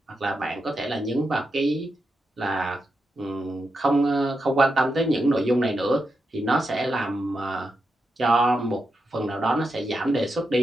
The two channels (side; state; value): both; normal; correlation 0.86